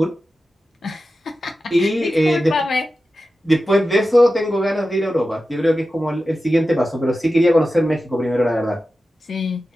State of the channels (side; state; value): both; normal; correlation 0.93